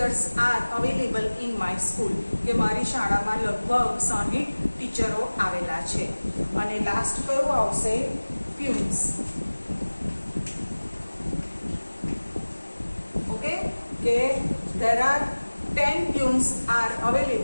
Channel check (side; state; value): both; inverted; correlation -1.00